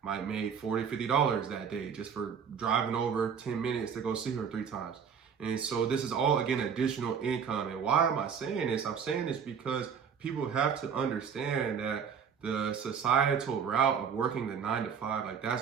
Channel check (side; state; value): left; quieter; 7.0 dB